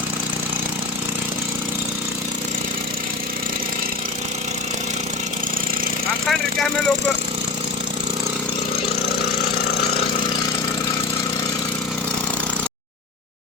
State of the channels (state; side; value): quieter; right; 3.9 dB